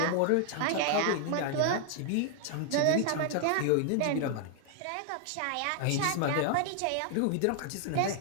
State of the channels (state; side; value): different; both; correlation 0.00